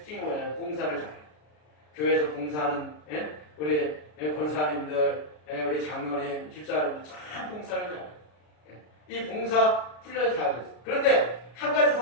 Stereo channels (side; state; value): right; late; 33 ms